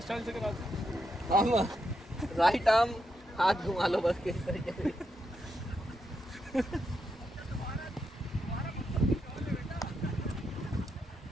स्टाइल से कराते? हम राइट आर्म हाथ घुमा लो बस, किस तरीके से।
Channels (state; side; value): normal; both; correlation 0.83